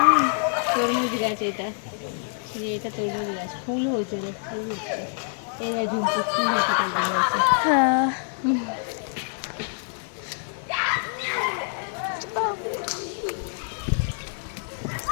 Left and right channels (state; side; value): silent; right; 61 dB below the other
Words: তরমুজ গাছ, এটা তরমুজ গাছ, ফুল হয়েছে রে, ফুল হচ্ছে, এই যে ঝুমকো ফুল হচ্ছে তরমুজ গাছে। হ্যাঁ,